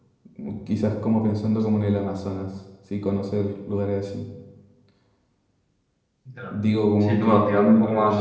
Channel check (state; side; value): identical; both; correlation 1.00